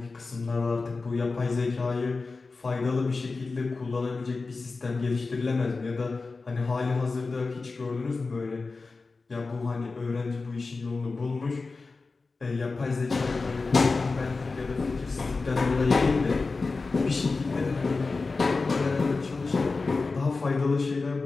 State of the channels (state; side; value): quieter; right; 4.0 dB